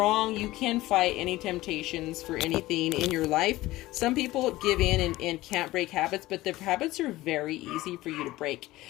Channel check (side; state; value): right; quieter; 17.7 dB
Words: You can fight any temptations for anything in your life. Some people give in and can't break habits, but the habits are very easy for you to break.